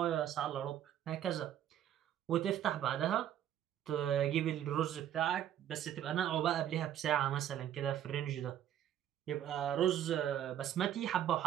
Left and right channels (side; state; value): left; quieter; 10.8 dB